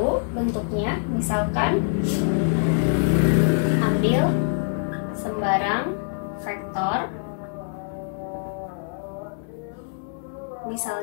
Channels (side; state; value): right; silent; digital silence